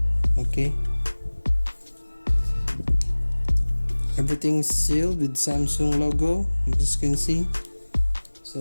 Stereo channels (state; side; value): inverted; both; correlation -1.00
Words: Okay, everything's sealed with Samsung logo, you just can see. So